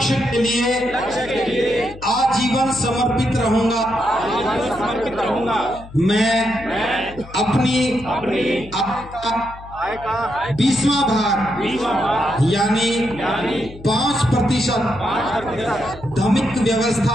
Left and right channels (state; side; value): noise; left; hum, 17 dB below the sound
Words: के लिए आजीवन समर्पित रहूंगा। मैं अपनी 20वां भाग यानी 5% धार्मिक